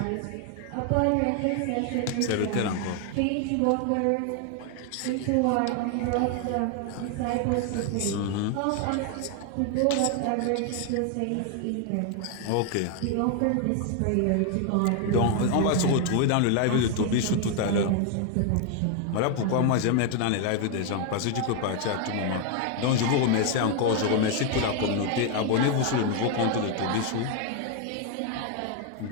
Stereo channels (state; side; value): different; both; correlation 0.01